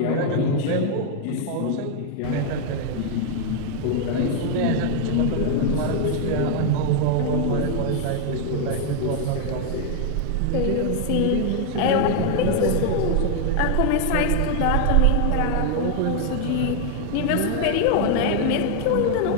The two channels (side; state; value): both; different; correlation 0.00